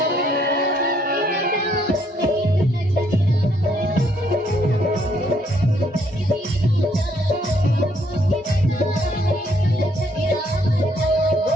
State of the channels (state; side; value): normal; both; correlation 0.69